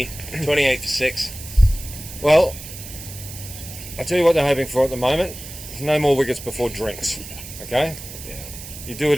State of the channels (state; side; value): noise; right; hiss, 13 dB below the sound